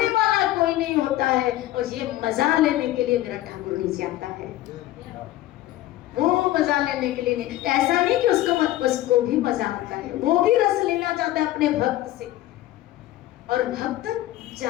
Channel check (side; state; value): right; quieter; 15.3 dB